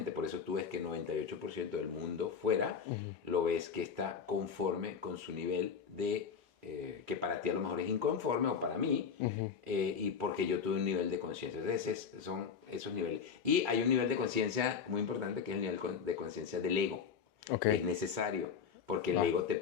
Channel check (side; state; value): right; quieter; 6.5 dB